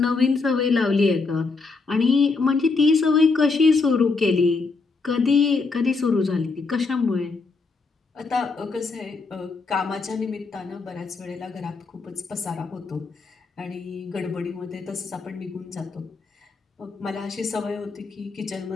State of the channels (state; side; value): quieter; right; 4.2 dB